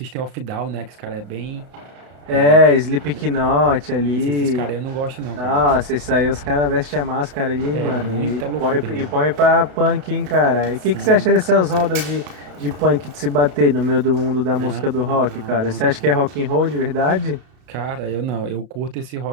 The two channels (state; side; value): late; left; 32 ms